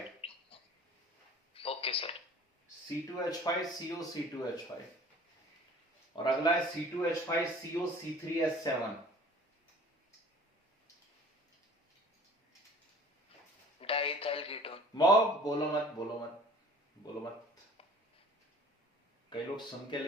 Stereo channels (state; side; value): normal; both; correlation 0.48